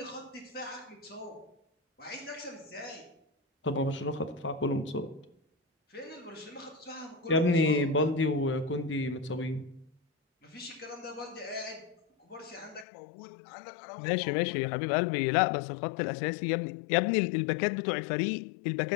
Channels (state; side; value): drops out; right; at 12.9 s